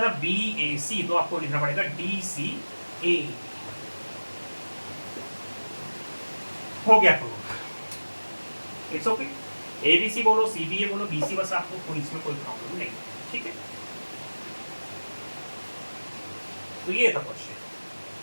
था BAC, तो आपको लिखना पड़ेगा DCA, हो गया तो इट्स ओके। ABC बोलो, CBA बोलो, BC, बस आपको कोई इसमें कोई प्रॉब्लम नहीं, ठीक है? तो ये था क्वेश्चन।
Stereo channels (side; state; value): both; inverted; correlation -1.00